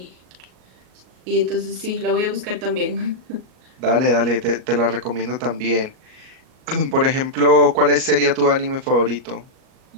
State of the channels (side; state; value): left; late; 38 ms